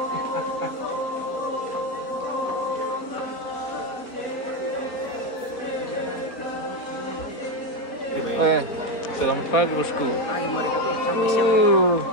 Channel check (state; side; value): late; right; 4.1 ms